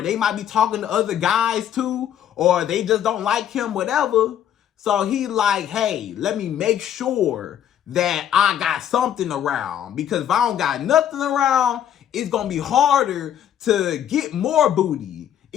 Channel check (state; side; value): quieter; right; 10.1 dB